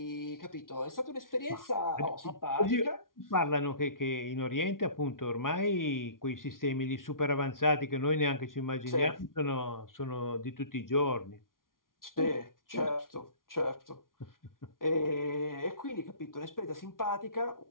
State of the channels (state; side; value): late; right; 0.90 ms